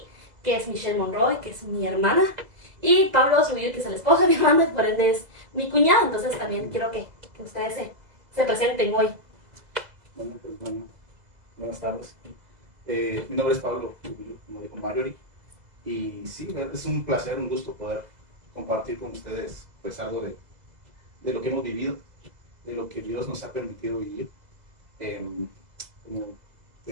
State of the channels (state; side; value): late; left; 2.0 ms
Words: que es Michelle Monroy, que es mi hermana, y Pablo Zubir, que es el esposo de mi hermana y por ende es mi cuñado. Entonces también quiero que ustedes se presenten hoy. Bueno, buenas tardes. Mi nombre es Pablo, como dijo Marjorie, y sí, es un placer, un gusto poder compartir con ustedes pues algo de lo que hemos vivido, de lo que Dios nos ha permitido vivir. Como